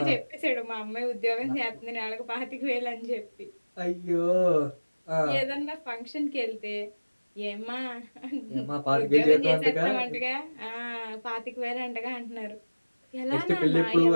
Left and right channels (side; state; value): both; inverted; correlation -1.00